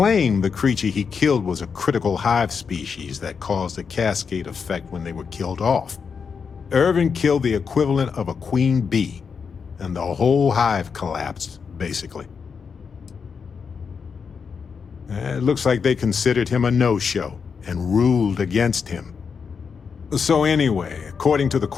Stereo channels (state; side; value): quieter; right; 6.0 dB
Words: the creature he killed was a critical hive species that caused a cascade effect when they were killed off. Irvin killed the equivalent of a queen bee, and the whole hive collapsed, basically. It looks like they considered him a no-show and ruled against him. So anyway, according to the